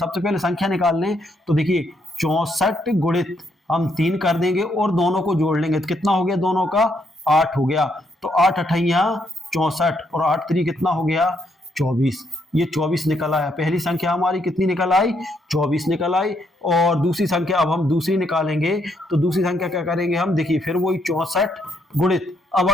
पहले संख्या निकाल लें, तो देखिए 64 गुणित हम 3 कर देंगे और दोनों को जोड़ लेंगे, तो कितना हो गया दोनों का 8 हो गया। तो 8 अठैया 64 और 8 3 कितना हो गया 24। ये 24 निकल आया। पहली संख्या हमारी कितनी निकल आई 24 निकल आई। और दूसरी संख्या अब हम दूसरी निकालेंगे तो दूसरी संख्या क्या करेंगे हम, देखिए फिर वही 64 गुणित, अब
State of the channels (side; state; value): both; normal; correlation 0.74